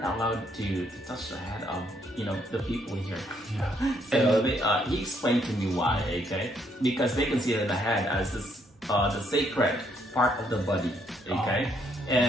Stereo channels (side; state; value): both; normal; correlation 0.71